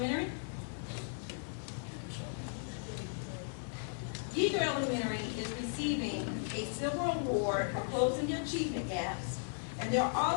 Yeager Elementary is receiving a silver award for closing the achievement gaps, and they're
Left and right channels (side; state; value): right; silent; digital silence